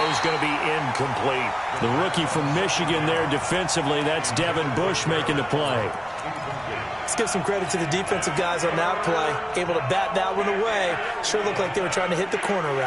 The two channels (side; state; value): both; identical; correlation 1.00